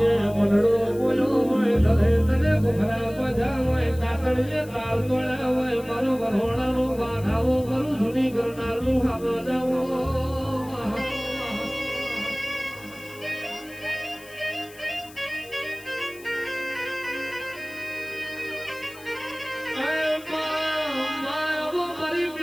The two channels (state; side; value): noise; left; hiss, 21 dB below the sound